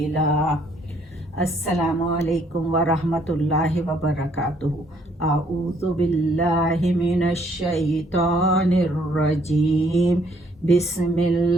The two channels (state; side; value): normal; both; correlation 0.66